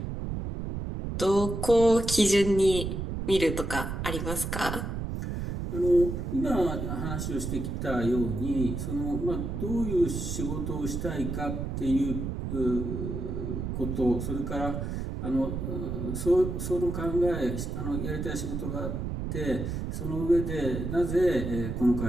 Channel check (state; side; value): noise; right; rumble, 4 dB below the sound